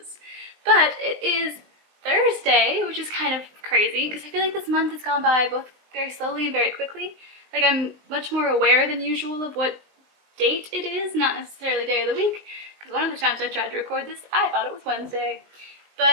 But it is Thursday, which is kind of crazy, because I feel like this month has gone by both very slowly and very quickly. Like, I'm much more aware than usual of what date it is, not necessarily day of the week. Because one of the times I tried to record this, I thought it was Wednesday.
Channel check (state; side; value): late; left; 19 ms